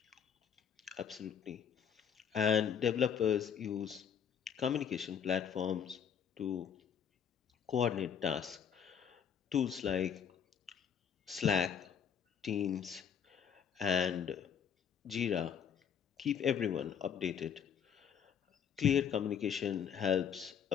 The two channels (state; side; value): quieter; right; 7.9 dB